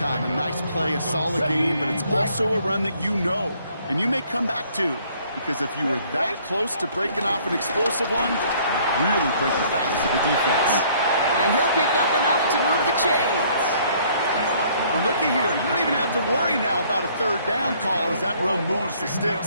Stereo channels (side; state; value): both; inverted; correlation -0.61